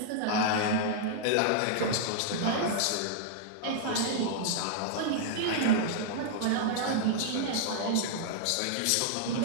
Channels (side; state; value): both; different; correlation -0.01